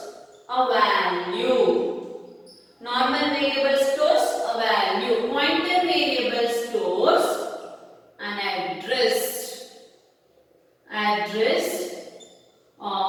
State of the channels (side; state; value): both; identical; correlation 1.00